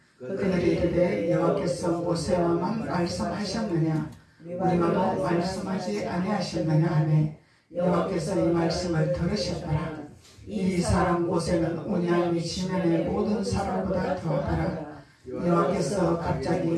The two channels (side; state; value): both; identical; correlation 1.00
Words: 그들이 이르되 여호와께서 모세와만 말씀하셨느냐 우리와도 말씀하지 아니하셨느냐 하매 여호와께서 이 말씀을 들으셨더라. 이 사람 모세는 온양이 지면의 모든 사람보다 더하더라. 여호와께서 갑자기